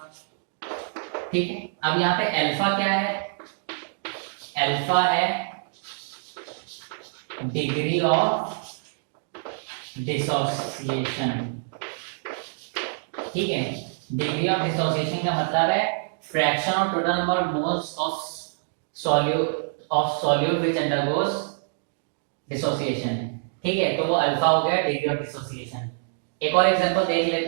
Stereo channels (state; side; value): silent; left; digital silence